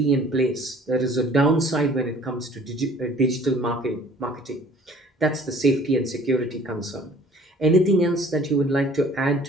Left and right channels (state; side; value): normal; both; correlation 0.52